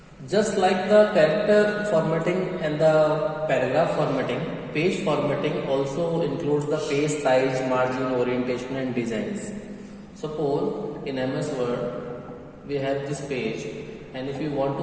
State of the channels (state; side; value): identical; both; correlation 1.00